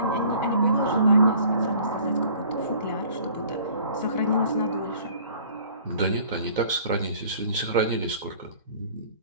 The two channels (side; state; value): both; inverted; correlation -0.52